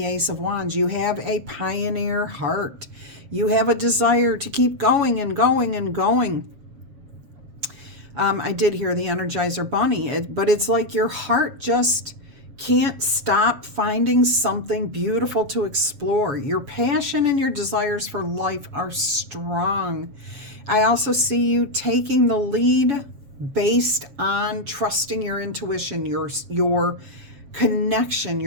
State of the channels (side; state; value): left; late; 7.1 ms